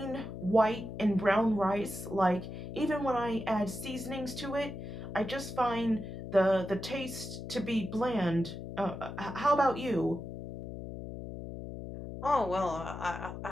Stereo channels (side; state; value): left; noise; hum, 8 dB below the sound